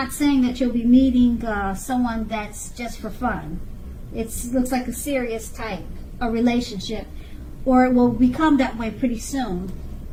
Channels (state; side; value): identical; both; correlation 1.00